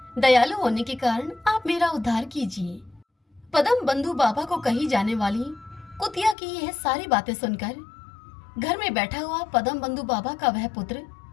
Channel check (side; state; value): right; drops out; at 6.4 s